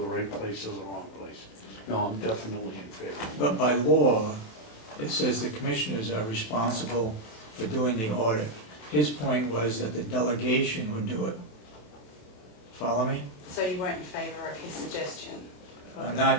right place or the wrong place. No, I'm definitely in favor. But by law, it says the commissioners are responsible for doing the audit. His point was that the delegation would do it. Follow me? So you weren't in favor of his suggestion Not,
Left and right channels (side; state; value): right; late; 27 ms